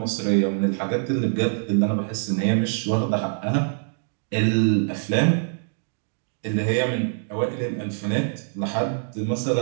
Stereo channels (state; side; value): silent; left; digital silence